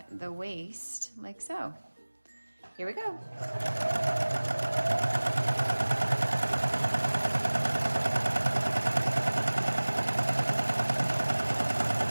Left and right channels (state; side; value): inverted; both; correlation -1.00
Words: the waist like so. Here we go.